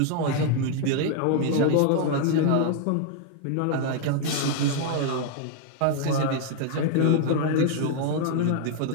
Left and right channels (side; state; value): both; different; correlation 0.00